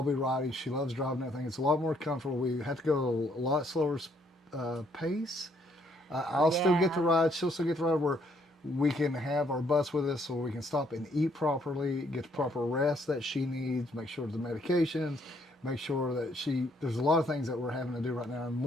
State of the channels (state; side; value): normal; both; correlation 0.69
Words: be riding. She loves driving that thing. It's a lot more comfortable. We have to go a lot slower pace. I'll still get to ride. She'll still get to ride, where we can have our bus with us so we can stop and eat properly, get the proper rest that she needs, make sure the medications, make sure that there's a lot of things that we're having to do right now, and